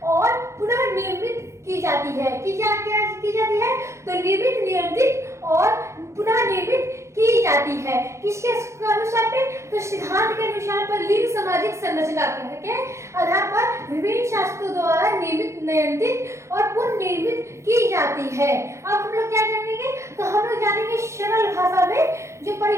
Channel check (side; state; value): left; late; 0.14 ms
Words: और पुनः निर्मित की जाती है। की जाती है तो निर्मित, नियंत्रित और पुनः निर्मित की जाती है। किसके अनुसार पे, तो सिद्धांत के अनुसार पर लिंग सामाजिक संरचना के आधार पर विभिन्न शास्त्रों द्वारा निर्मित, नियंत्रित और पुनर्निर्मित की जाती है। अब हम लोग क्या जानेंगे, तो हम लोग जानेंगे सरल भाषा में जो